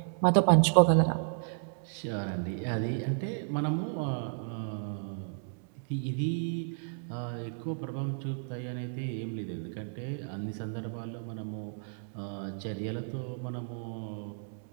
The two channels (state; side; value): silent; left; digital silence